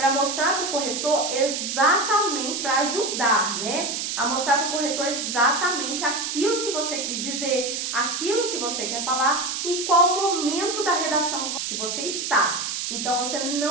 mostrar para o corretor exatamente, para ajudar, né? A mostrar para o corretor exatamente aquilo que você quis dizer, aquilo que você quer falar e qual momento da redação que você está. Então, você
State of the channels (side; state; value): right; noise; hiss, 3 dB below the sound